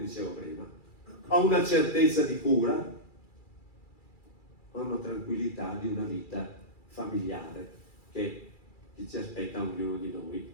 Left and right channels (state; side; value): late; right; 2.4 ms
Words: prima, a una certezza di cura, a una tranquillità di una vita familiare che ci aspetta ognuno di